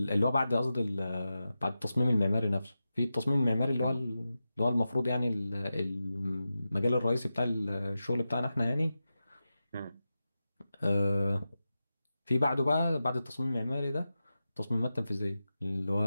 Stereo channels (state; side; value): inverted; both; correlation -0.92